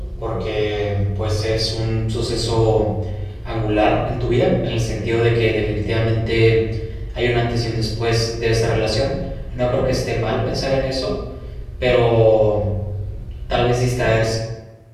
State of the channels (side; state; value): both; identical; correlation 1.00